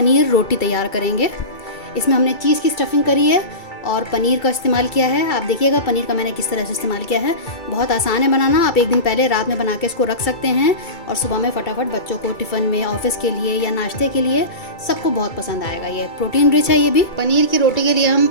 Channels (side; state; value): right; late; 2.3 ms